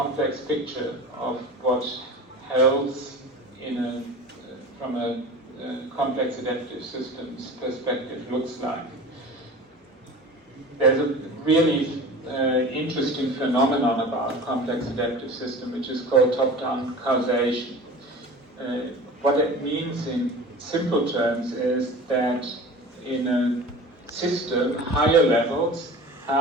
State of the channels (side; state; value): both; normal; correlation 0.36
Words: picture of what health from a complex adaptive systems perspective looks like. There's a really interesting phenomenon about complex adaptive system, which is called top-down causation. What it means in simple terms is that in a system, higher levels